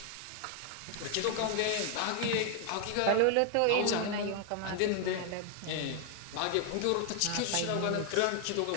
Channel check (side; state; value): both; different; correlation 0.00